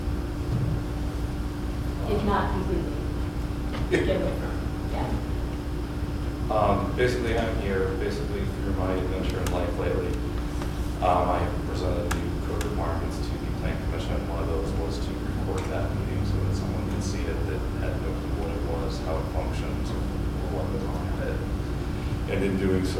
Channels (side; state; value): both; identical; correlation 1.00